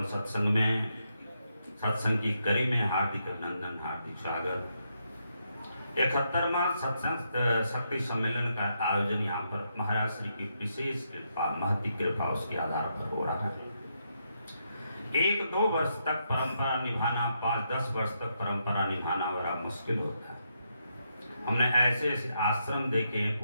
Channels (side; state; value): both; inverted; correlation -0.80